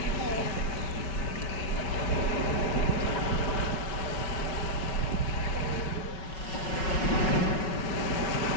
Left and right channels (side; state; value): right; late; 5.4 ms